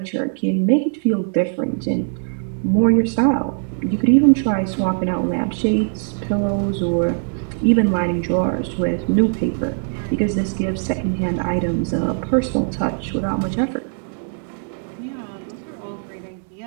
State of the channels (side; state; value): left; silent; digital silence